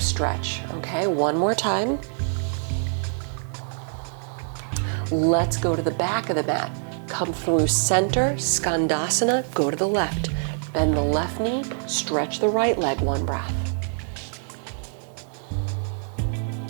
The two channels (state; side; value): silent; left; digital silence